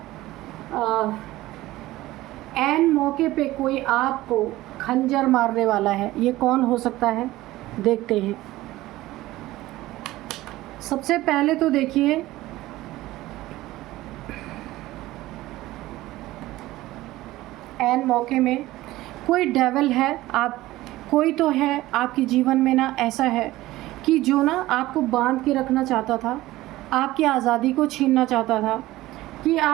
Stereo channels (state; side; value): quieter; left; 17.1 dB